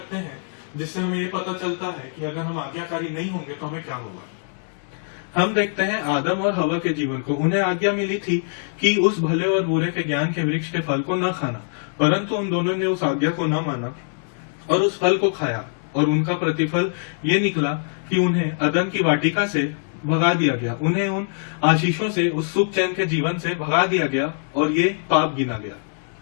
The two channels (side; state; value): right; silent; 63 dB below the other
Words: हैं जिससे हमें ये पता चलता है कि अगर हम आज्ञाकारी नहीं होंगे तो हमें क्या होगा। हम देखते हैं आदम और हवा के जीवन को। उन्हें आज्ञा मिली थी कि उस भले और बुरे के ज्ञान के वृक्ष के फल को न खाना, परंतु उन दोनों ने उस आज्ञा को न माना और उस फल को खाया और उनका प्रतिफल ये निकला कि उन्हें अदन की वाटिका से भगा दिया गया, उन्हें उन आशीषों से, उस सुख चैन के जीवन से भगा दिया गया और ये पाप गिना गया।